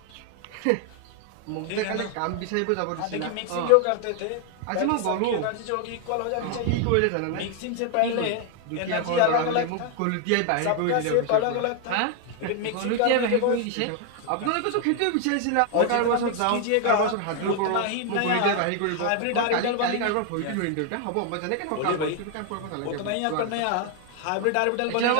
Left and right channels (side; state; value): both; different; correlation 0.00